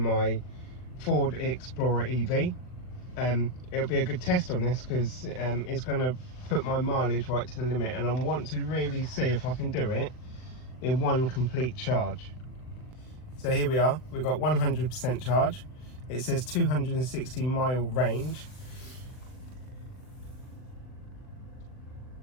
Ford Explorer EV. It'll be a good test on this because it's going to put my mileage right to the limit, and I want to really see if I can do it in one complete charge. So here we are, we've got 100% charge. It says 260 mile range.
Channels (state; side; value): late; right; 39 ms